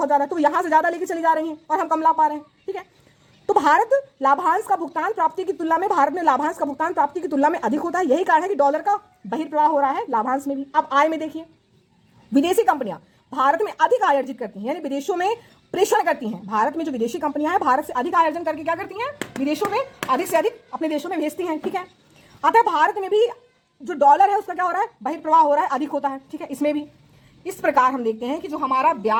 ज्यादा है, तो यहाँ से ज्यादा लेके चली जा रही है और हम कम ला पा रहे हैं। ठीक है, तो भारत लाभांश का भुगतान प्राप्ति की तुलना में भारत में लाभांश का भुगतान प्राप्ति की तुलना में अधिक होता है। यही कारण है कि डॉलर का बहिर्प्रवाह हो रहा है लाभांश में भी। अब आय में देखिए, विदेशी कंपनियां भारत में अधिक आय अर्जित करती हैं यानी विदेशों में प्रेषण करती हैं। भारत में जो विदेशी कंपनियां हैं भारत से अधिक आय अर्जन करके क्या करती हैं, विदेशों में अधिक से अधिक अपने देशों में भेजती हैं। ठीक है, अतः भारत में भी जो डॉलर है उसका क्या हो रहा है, बहिर्प्रवाह हो रहा है, अधिक होता है। ठीक है, इसमें भी इस प्रकार हम देखते हैं कि जो हमारा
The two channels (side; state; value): both; identical; correlation 1.00